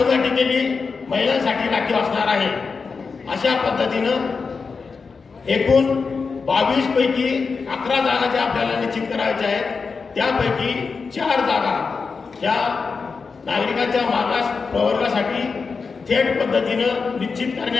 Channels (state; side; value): quieter; right; 4.9 dB